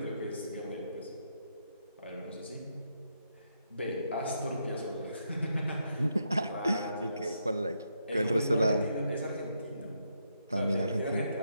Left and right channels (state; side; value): inverted; both; correlation -0.79